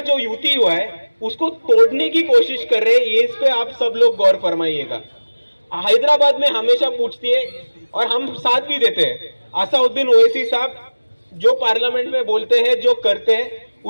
जो युति हुआ है उसको तोड़ने की कोशिश कर रहे हैं। ये इस पे आप सब लोग गौर फरमाइएगा। हैदराबाद में हमेशा पूछती है और हम साथ भी देते हैं, असादुद्दीन ओवैसी साहब जो पार्लियामेंट में बोलते हैं, जो करते हैं,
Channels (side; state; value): both; inverted; correlation -1.00